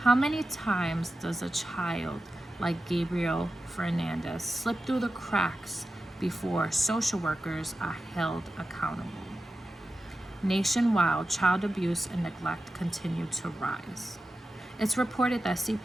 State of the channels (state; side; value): normal; both; correlation 0.93